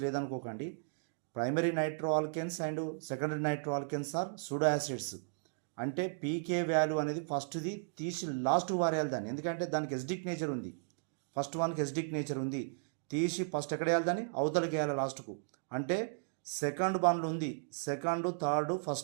లేదనుకోకండి. Primary nitro alkanes and secondary nitro alkanes are pseudo acids. అంటే పీకే వాల్యూ అనేది ఫస్ట్ది తీసి లాస్ట్ వారేయాలి దాన్ని, ఎందుకంటే దానికి ఎసిడిక్ నేచర్ ఉంది. ఫస్ట్ వన్కి ఎసిడిక్ నేచర్ ఉంది, తీసి ఫస్ట్ ఎక్కడ వేయాలి దాన్ని, అవతలకి వేయాలి లాస్ట్కు. అంటే సెకండ్ వన్లు ఉంది, సెకండ్ థర్డ్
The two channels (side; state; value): left; silent; digital silence